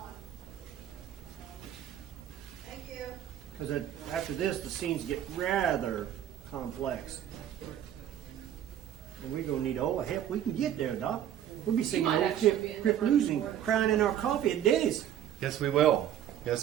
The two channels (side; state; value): left; quieter; 10.7 dB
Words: Thank you. Because after this, the scenes get rather complex. And we're going to need all the help we can get there, Doc. We'll be singing might old actually be in the Crip front Blues and board. crying in our coffee at Denny's. Yes, we will.